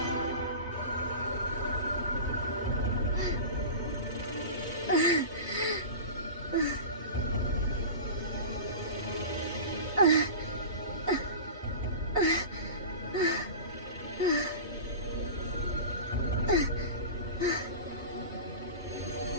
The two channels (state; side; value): inverted; both; correlation -0.31